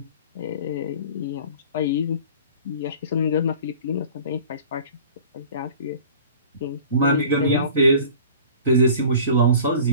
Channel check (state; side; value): inverted; both; correlation -0.44